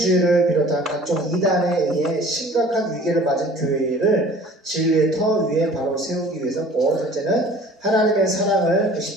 비롯한 각종 이단에 의해 심각한 위기를 맞은 교회를 진리의 터 위에 바로 세우기 위해서고, 둘째는 하나님의 사랑을, 그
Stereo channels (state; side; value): normal; both; correlation 0.48